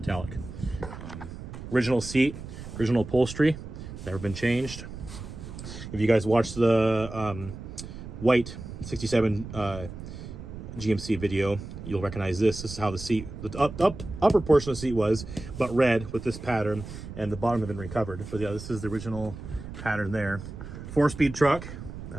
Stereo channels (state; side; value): noise; right; rumble, 11 dB below the sound